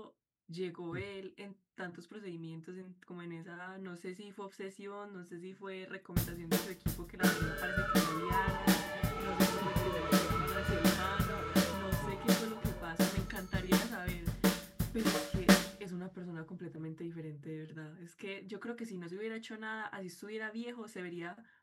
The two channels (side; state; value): both; identical; correlation 1.00